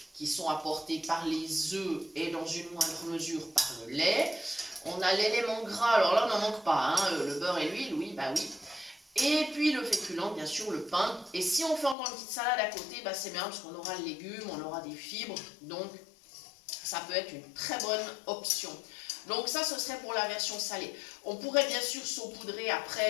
qui sont apportées par les œufs et dans une moindre mesure par le lait. On a l'élément gras, alors là on n'en manque pas, hein, le beurre et l'huile, oui, bah oui. Et puis le féculent, bien sûr, le pain. Et si on fait encore une petite salade à côté, bah c'est bien parce qu'on aura le légume, on aura des fibres, donc ça peut être une très bonne option. Donc ça, ce serait pour la version salée. On pourrait bien sûr saupoudrer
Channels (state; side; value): drops out; right; at 12.0 s